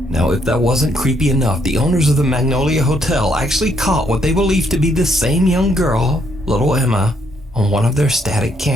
Now, if that wasn't creepy enough, the owners of the Magnolia Hotel actually caught what they believe to be the same young girl, little Emma, on one of their static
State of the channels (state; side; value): normal; both; correlation 0.72